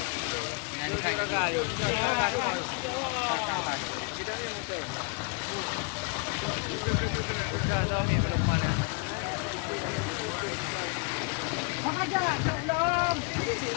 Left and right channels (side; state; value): right; quieter; 32.8 dB